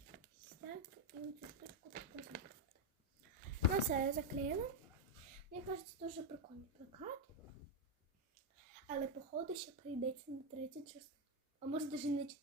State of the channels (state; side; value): normal; both; correlation 0.03